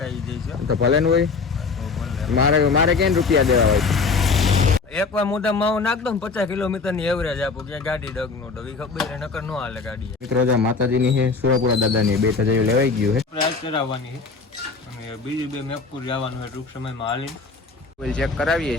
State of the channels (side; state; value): right; quieter; 4.5 dB